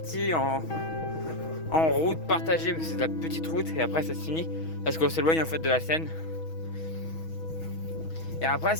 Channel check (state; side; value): late; right; 6.2 ms